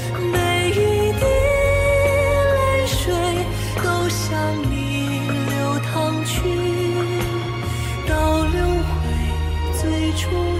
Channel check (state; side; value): identical; both; correlation 1.00